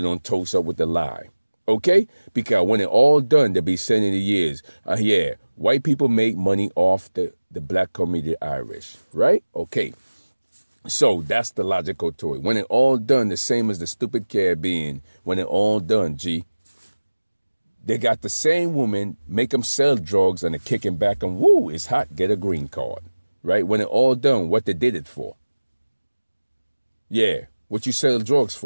don't toast up with the lie. Okay? Because when it all done, they'll be saying in the years, yeah, white people make money off the black community Irish. Right? Okay. So that's the logical to it. When it all done, the same as the stupid Caribbean, when it all done, G, they got the same woman, make them sell drugs and they're kicking back and woo, it's hot, get a green card. Right? When it all done, what they did it for? Yeah. What you sell drugs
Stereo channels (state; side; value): inverted; both; correlation -1.00